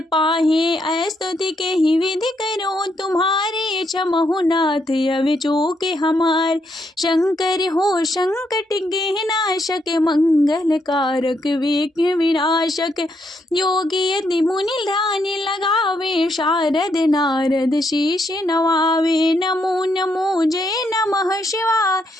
पाहे। स्तुति के ही विधि करो तुम्हारे, क्षमहु नाथ अवि चूके हमार। शंकर हो संकट के नाशक, मंगल कारक विघ्न विनाशक। योगी यदि मुनि ध्यान लगावे, शारद नारद शीश नवावे। नमो नमो जय नमः शिवाय,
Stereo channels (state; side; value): normal; both; correlation 0.77